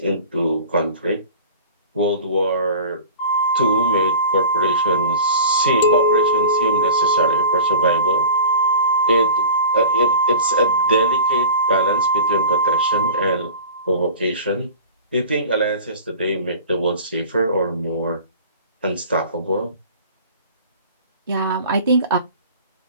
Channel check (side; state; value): both; inverted; correlation -0.38